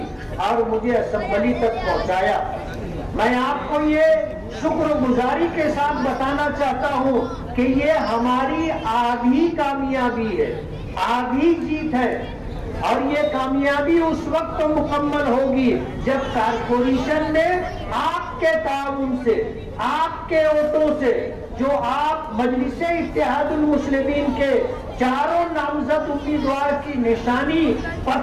और मुझे असेंबली तक पहुंचाया। मैं आपको ये शुक्रगुजारी के साथ बताना चाहता हूँ कि ये हमारी आधी कामयाबी है, आधी जीत है और ये कामयाबी उस वक्त मुकम्मल होगी जब कारपोरेशन में आपके ताउन से, आपके वोटों से, जो आप मजलिसे इत्तेहादुल मुस्लिमीन के चारों नामजद उम्मीदवार की निशानी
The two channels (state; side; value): identical; both; correlation 1.00